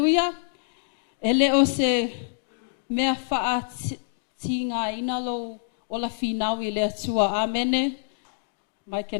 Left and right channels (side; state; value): right; silent; digital silence